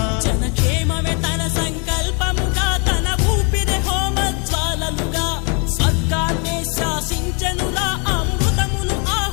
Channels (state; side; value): quieter; right; 35.8 dB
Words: జనక్షేమమే తన సంకల్పముగా తన ఊపిరి హోమజ్వాలలుగా స్వర్గాన్నే శాసించెనురా అమృతమును